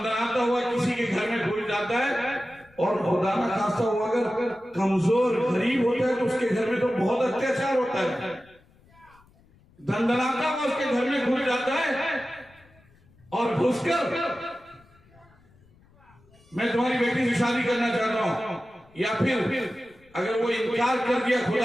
हुआ किसी के घर में घुस जाता है और खुदा ना खास्ता हुआ अगर कमजोर गरीब होता है तो उसके घर में तो बहुत अत्याचार होता है। दंदनाता हुआ उसके घर में घुस जाता है और घुसकर मैं तुम्हारी बेटी से शादी करना चाहता हूं, या फिर अगर वो इनकार कर दिया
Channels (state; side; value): noise; left; rumble, 29 dB below the sound